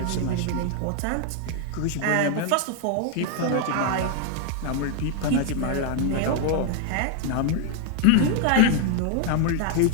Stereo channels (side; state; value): both; different; correlation 0.00